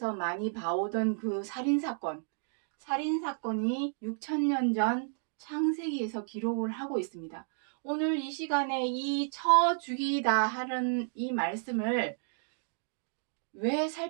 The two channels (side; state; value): left; silent; digital silence